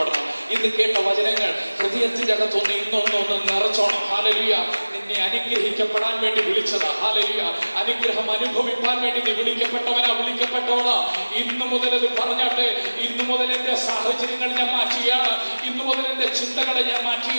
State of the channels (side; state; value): both; inverted; correlation -1.00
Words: ഇന്ന് കേട്ട വചനങ്ങൾ ഹൃദയത്തിന്റെ അകത്തൊന്ന് ഇന്നൊന്നൊന്ന് നിറച്ചോണം. ഹല്ലേലൂയ. നിന്നെ അനുഗ്രഹിക്കപ്പെടാൻ വേണ്ടി വിളിച്ചതാ. ഹല്ലേലൂയ. അനുഗ്രഹം അനുഭവിക്കാൻ വേണ്ടി നീ വിളിക്കപ്പെട്ടവളാ. ഇന്നു മുതൽ അത് പറഞ്ഞാട്ടെ. ഇന്നു മുതൽ എന്റെ സാഹചര്യങ്ങൾ ഞാൻ മാറ്റുകയാണ്. ഇന്നു മുതൽ എന്റെ ചിന്തകളെ ഞാൻ